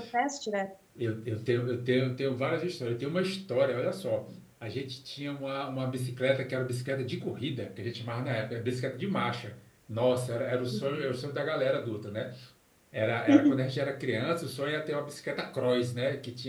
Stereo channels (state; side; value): identical; both; correlation 1.00